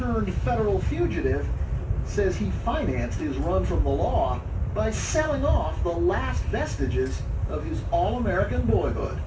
federal fugitive, says he financed his run from the law by selling off the last vestiges of his all-American boyhood.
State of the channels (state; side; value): identical; both; correlation 1.00